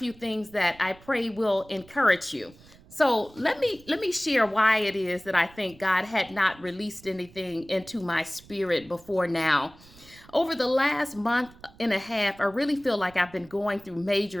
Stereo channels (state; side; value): noise; right; rumble, 24 dB below the sound